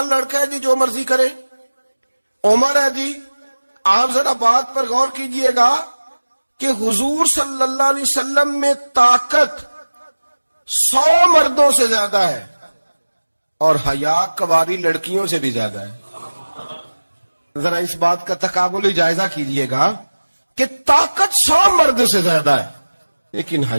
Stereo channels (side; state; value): both; inverted; correlation -1.00